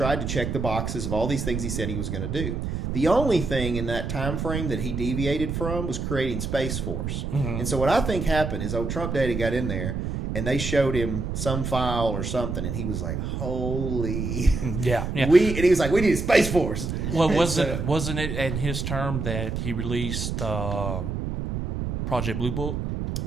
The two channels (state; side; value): noise; right; rumble, 3 dB below the sound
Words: to check the boxes of all these things he said he was going to do. The only thing in that time frame that he deviated from was creating Space Force. Mm-hmm. And so what I think happened is old Trump Daddy got in there, and they showed him some file or something, and he was like, "Holy, yeah." And he was like, "We need a Space Force." Well, wasn't it in his term that he released Project Blue Book,